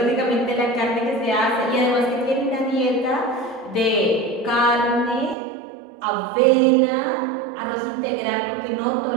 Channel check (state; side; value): drops out; left; at 5.4 s